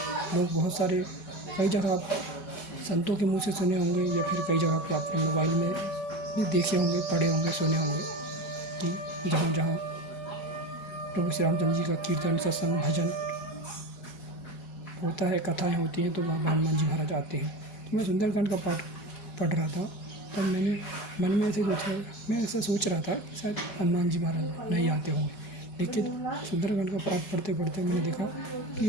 लोग बहुत सारे कई जगह आप संतों के मुंह से सुने होंगे, या फिर कई जगह पे आपने मोबाइल में भी देखे होंगे, पढ़े होंगे, सुने होंगे कि जहाँ प्रभु श्री रामचंद्र जी का कीर्तन, सत्संग, भजन होता है, कथाएँ होती हैं, तो वहाँ हनुमान जी महाराज आते हैं। तो मैं सुंदरकांड का पाठ पढ़ रहा था, तब मैंने मन में मैं ऐसा सोच रहा था कि शायद हनुमान जी महाराज नहीं आते होंगे। लेकिन सुंदरकांड का पाठ पढ़ते मैंने देखा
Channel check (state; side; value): late; right; 4.1 ms